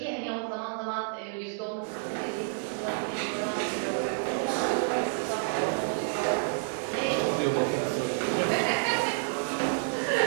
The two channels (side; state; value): left; silent; digital silence